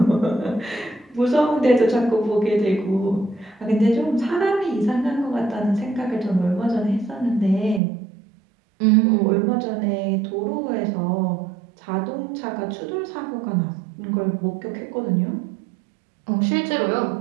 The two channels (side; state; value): left; drops out; at 7.8 s